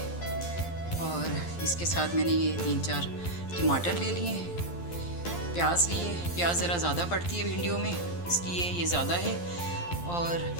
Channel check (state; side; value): late; right; 12 ms